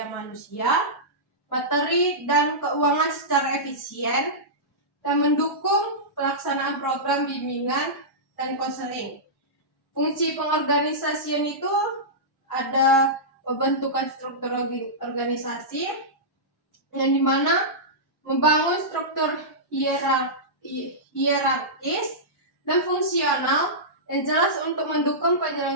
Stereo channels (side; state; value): right; late; 1.1 ms